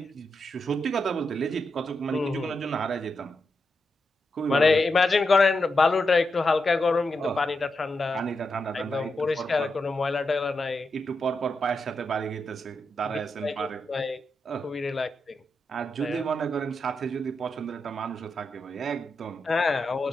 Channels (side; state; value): both; normal; correlation 0.86